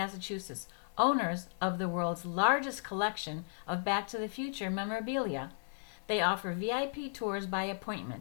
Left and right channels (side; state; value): right; silent; digital silence